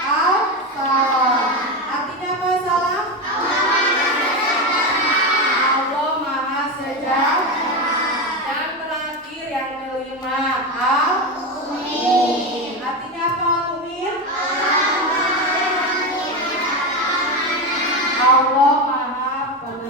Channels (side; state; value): both; normal; correlation 0.16